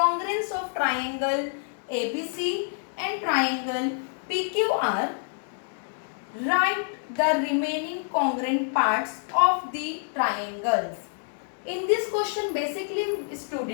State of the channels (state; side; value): silent; right; 60 dB below the other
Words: of triangle ABC and triangle PQR. Write the remaining congruent parts of the triangles. In this question, basically